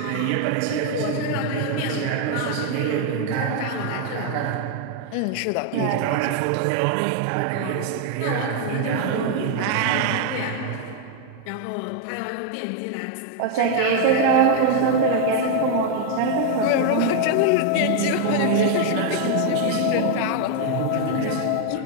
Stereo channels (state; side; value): different; both; correlation 0.00